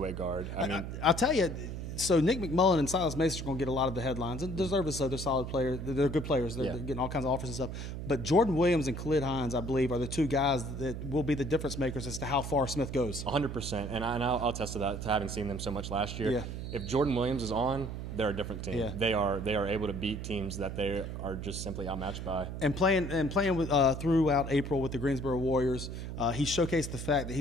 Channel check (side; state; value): right; noise; hum, 6 dB below the sound